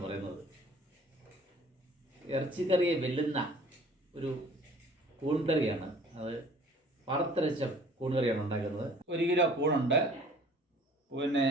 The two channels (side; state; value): both; normal; correlation 0.51